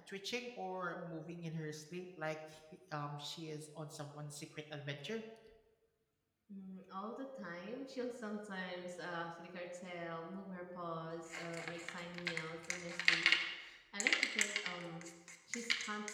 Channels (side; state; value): both; identical; correlation 1.00